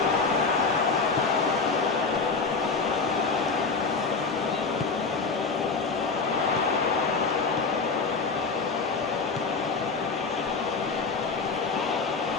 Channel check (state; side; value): quieter; right; 4.5 dB